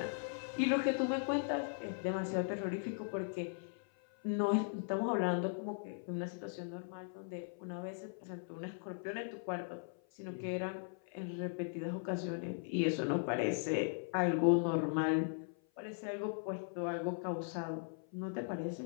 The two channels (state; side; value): silent; right; 52 dB below the other